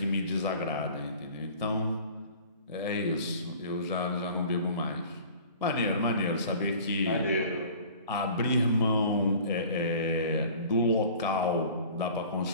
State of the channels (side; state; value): both; inverted; correlation -0.46